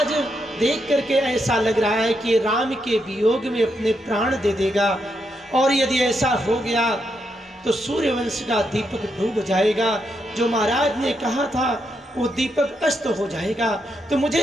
देख करके ऐसा लग रहा है कि राम के वियोग में अपने प्राण दे देगा। और यदि ऐसा हो गया तो सूर्यवंश का दीपक डूब जाएगा। जो महाराज ने कहा था वो दीपक अस्त हो जाएगा। तो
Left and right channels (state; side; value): normal; both; correlation 0.81